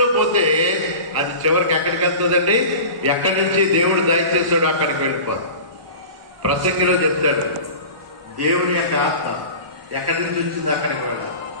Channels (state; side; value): late; left; 1.1 ms